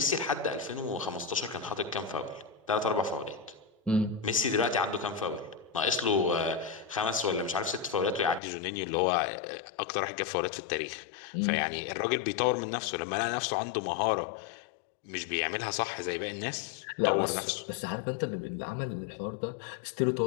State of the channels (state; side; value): drops out; right; at 8.4 s